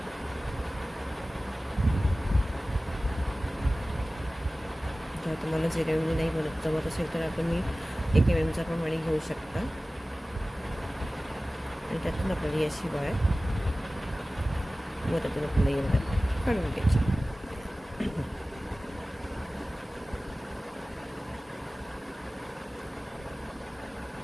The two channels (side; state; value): both; normal; correlation 0.97